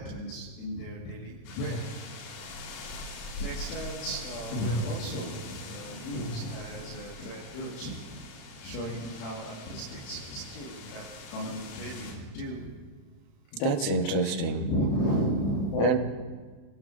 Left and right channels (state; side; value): late; right; 35 ms